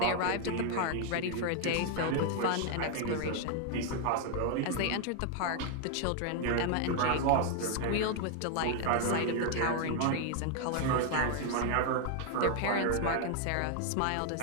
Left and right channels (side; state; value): both; different; correlation 0.00